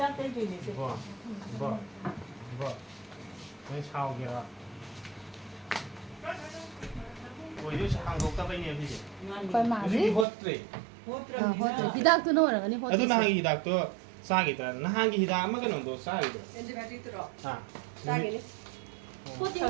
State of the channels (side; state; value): left; drops out; at 10.2 s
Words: ꯇꯩꯗꯣꯏꯅꯦ ꯁꯦ ꯕꯣ ꯅꯣꯏ ꯁꯥꯎꯒꯦꯔ ꯑꯣꯏꯗꯣꯏꯁꯦ ꯍꯥꯡꯗꯣꯛꯇꯕꯩꯅꯦ ꯁꯤꯁꯦ ꯍꯣꯏ ꯃꯥꯁꯤ ꯍꯣꯠꯇ꯭ꯔꯦ ꯍꯣꯠꯇ꯭ꯔꯕꯅꯤꯅ ꯍꯤꯗꯥꯛꯇꯨꯅ ꯑꯣꯏꯔꯒꯅꯤ ꯑꯗꯨ ꯍꯣꯠꯇ꯭ꯔꯤꯁꯦ ꯅꯍꯥꯟꯒꯤ ꯍꯤꯗꯥꯛꯇꯣ ꯆꯥꯈꯤꯗ꯭ꯔꯥ ꯅꯍꯥꯟꯒꯤ ꯍꯤꯗꯥꯛ ꯑꯃ ꯀꯩꯅꯣꯗꯣ ꯆꯥꯈꯤꯗ꯭ꯔꯣ ꯑꯦꯟꯇꯤꯕꯥꯏꯑꯣꯇꯤꯛꯇꯨꯔꯣ ꯆꯥꯒꯤꯅꯤ ꯍꯣꯠꯇꯤ